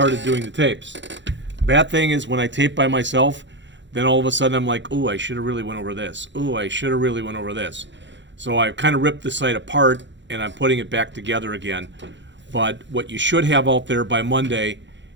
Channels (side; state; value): left; late; 0.53 ms